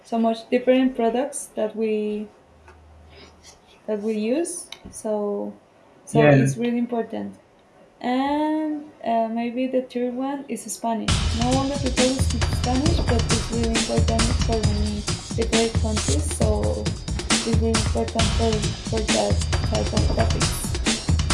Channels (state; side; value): identical; both; correlation 1.00